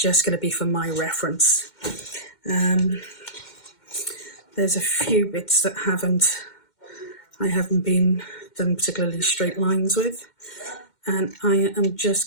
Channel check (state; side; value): late; right; 2.1 ms